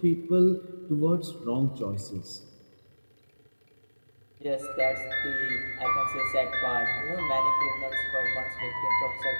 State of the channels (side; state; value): both; inverted; correlation -1.00